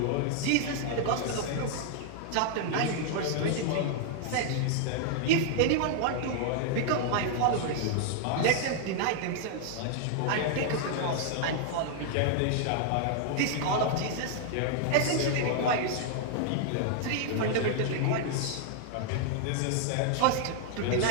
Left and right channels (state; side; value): different; both; correlation 0.00